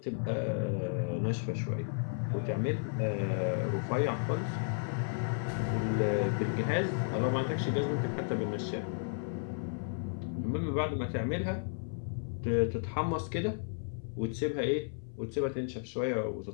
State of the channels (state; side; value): silent; right; 55 dB below the other